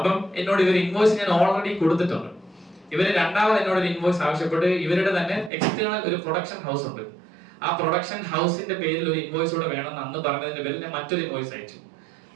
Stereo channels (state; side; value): drops out; left; at 5.5 s